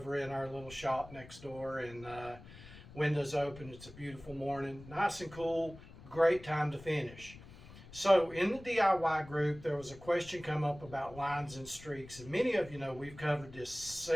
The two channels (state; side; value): noise; left; rumble, 18 dB below the sound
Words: in our little shop next door, and windows open. It's a beautiful morning, nice and cool. Great time to finish. So in the DIY group, there was a question come up about lines and streaks, and many of you know we've covered this